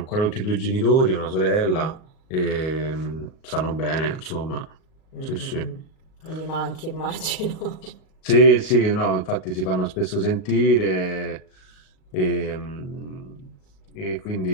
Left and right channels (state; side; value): late; right; 38 ms